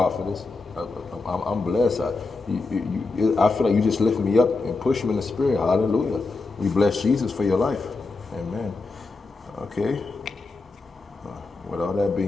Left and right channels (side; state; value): right; quieter; 3.7 dB